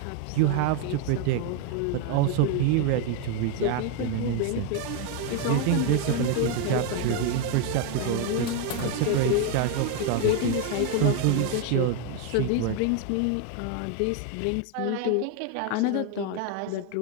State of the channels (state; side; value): different; both; correlation 0.01